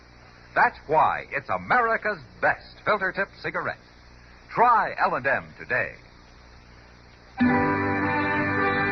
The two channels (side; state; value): both; identical; correlation 1.00